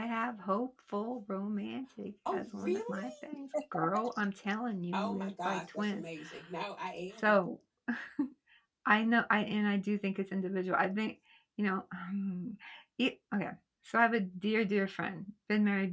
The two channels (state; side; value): identical; both; correlation 1.00